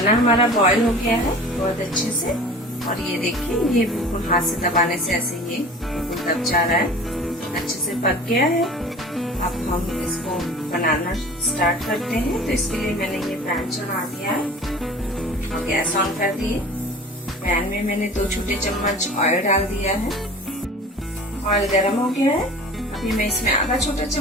हमारा बॉईल हो गया है बहुत अच्छे से और ये देखिए, ये बिल्कुल हाथ से दबाने से ऐसे ये दब जा रहा है, अच्छे से पक गया है। अब हम इसको बनाना स्टार्ट करते हैं। तो इसके लिए मैंने ये पैन चढ़ा दिया है और गैस ऑन कर दिए। पैन में मैंने 2 छोटे चम्मच ऑयल डाल दिया है। ऑयल गर्म हो गया है, अभी मैं इसमें आधा छोटा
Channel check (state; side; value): normal; both; correlation 0.41